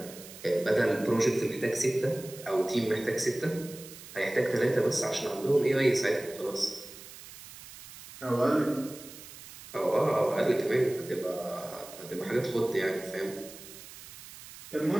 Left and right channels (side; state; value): right; noise; hiss, 16 dB below the sound